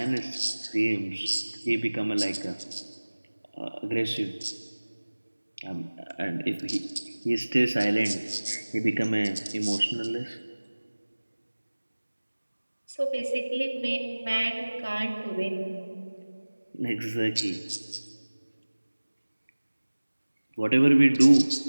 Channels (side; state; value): both; inverted; correlation -1.00